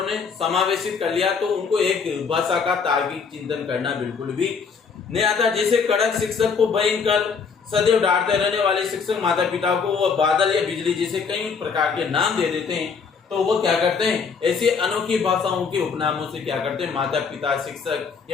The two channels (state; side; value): quieter; right; 5.6 dB